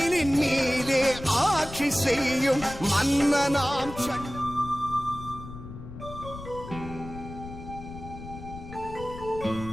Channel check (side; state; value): left; noise; rumble, 12 dB below the sound